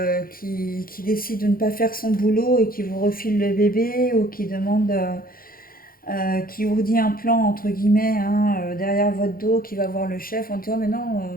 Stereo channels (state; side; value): late; right; 0.42 ms